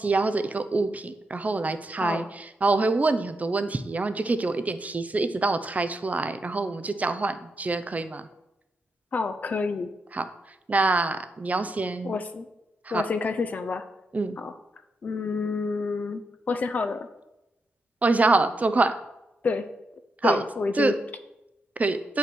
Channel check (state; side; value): normal; both; correlation 0.83